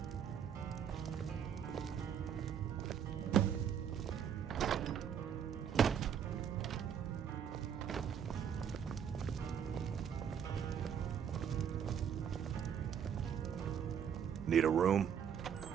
Need a room?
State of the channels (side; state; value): left; quieter; 8.1 dB